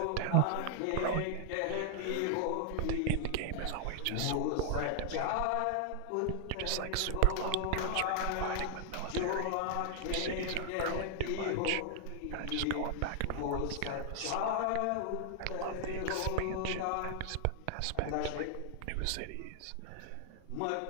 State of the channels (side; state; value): both; different; correlation 0.00